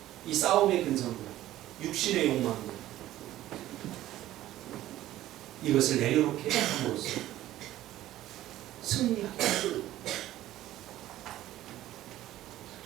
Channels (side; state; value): left; quieter; 14.3 dB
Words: 이 싸움의 근성들, 육신의 욕망들, 이것을 내려놓게 함으로써 승리하게.